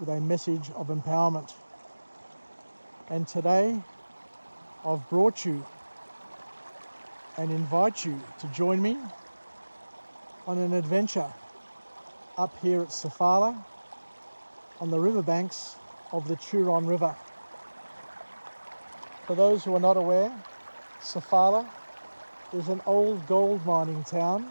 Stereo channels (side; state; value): both; inverted; correlation -1.00